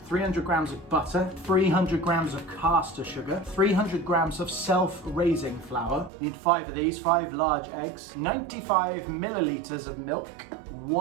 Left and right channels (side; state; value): left; drops out; at 6.1 s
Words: grams of butter, 300 grams of caster sugar, 300 grams of self-raising flour. You need 5 of these, 5 large eggs, 95 milliliters of milk,